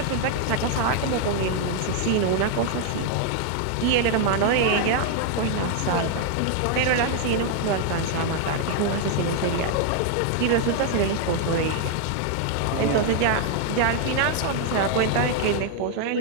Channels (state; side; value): different; both; correlation 0.00